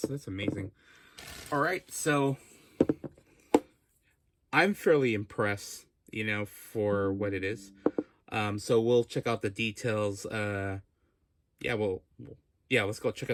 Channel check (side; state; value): both; identical; correlation 1.00